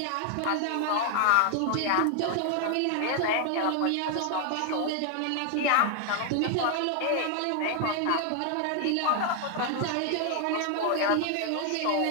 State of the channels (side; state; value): both; different; correlation 0.00